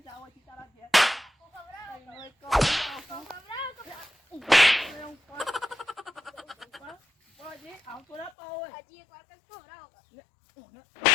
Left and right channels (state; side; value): drops out; right; at 8.3 s